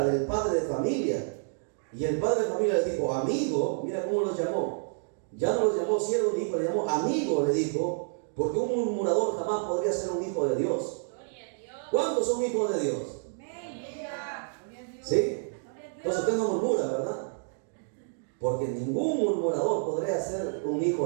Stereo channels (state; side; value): silent; left; digital silence